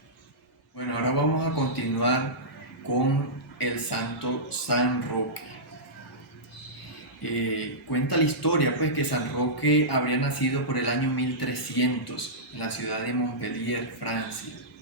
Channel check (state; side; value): normal; both; correlation -0.15